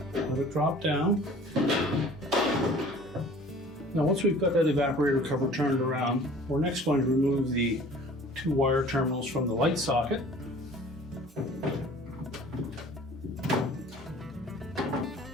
let it drop down. Now once we've got that evaporator cover turned around, we're next going to remove the two wire terminals from the light socket.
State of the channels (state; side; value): normal; both; correlation 0.48